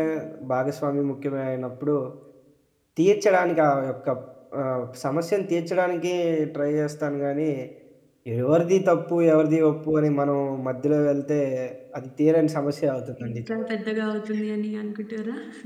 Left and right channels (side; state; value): both; identical; correlation 1.00